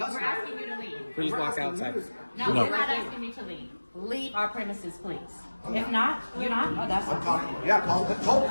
asking you to leave. Please walk outside. No, you're not asking me to leave. Leave our premises, please. If not, you're not. Oh, that's fine. Yeah, call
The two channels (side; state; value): both; inverted; correlation -1.00